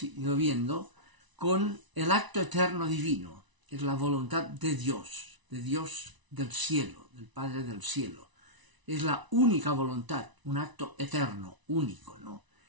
ido viendo, con el acto eterno divino. Es la voluntad de Dios del cielo, del Padre del cielo. Es la única voluntad, un acto eterno, único, ¿no?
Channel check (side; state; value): left; late; 1.0 ms